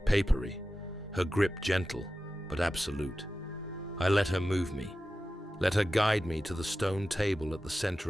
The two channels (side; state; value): both; normal; correlation 0.93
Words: papery, her grip gentle but absolute. I let her move me, let her guide me to the stone table at the